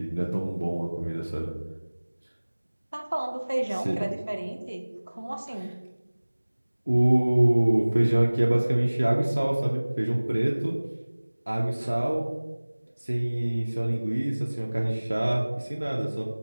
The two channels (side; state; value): both; inverted; correlation -1.00